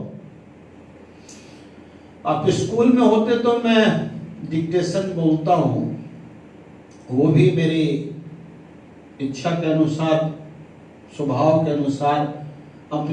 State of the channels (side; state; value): both; identical; correlation 1.00